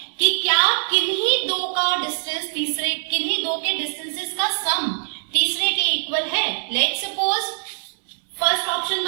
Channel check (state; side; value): silent; left; 61 dB below the other